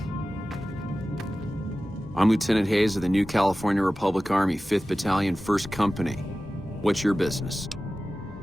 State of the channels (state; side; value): normal; both; correlation 0.96